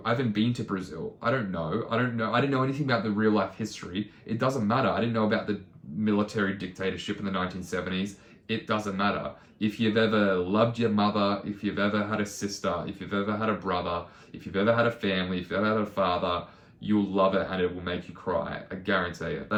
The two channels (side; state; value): both; identical; correlation 1.00